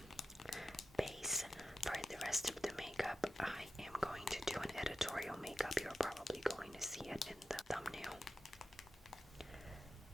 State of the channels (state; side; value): normal; both; correlation 0.92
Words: base for the rest of the makeup. I am going to do an editorial makeup. You're probably going to see it in the thumbnail.